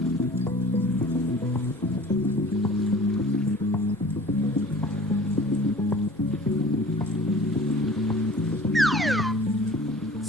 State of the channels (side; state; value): both; normal; correlation 0.45